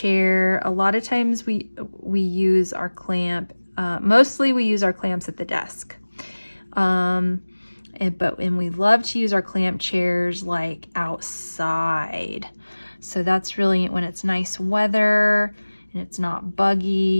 A lot of times we use our clamp, mostly we use our clamps at the desk. And we love to use our clamp chairs like outside. So that's really when it's nice weather and it's not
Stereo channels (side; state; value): both; inverted; correlation -1.00